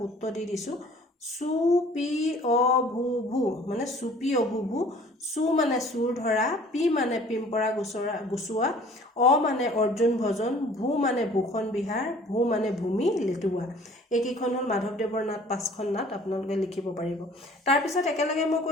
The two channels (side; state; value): both; normal; correlation 0.51